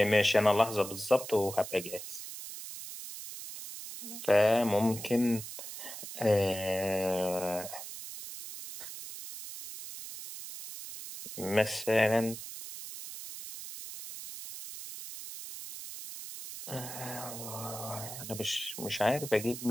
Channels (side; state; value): right; noise; hiss, 10 dB below the sound